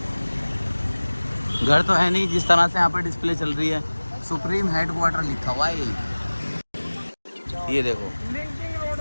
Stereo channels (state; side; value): inverted; both; correlation -1.00